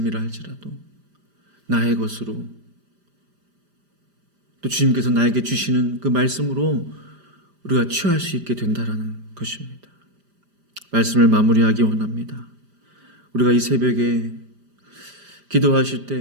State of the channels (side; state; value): left; late; 5.0 ms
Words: 할지라도 나의 것으로, 또 주님께서 나에게 주시는 그 말씀으로 우리가 취할 수 있게 된다라는 것입니다. 말씀을 마무리하기 원합니다. 우리가 이 새벽에 기도하실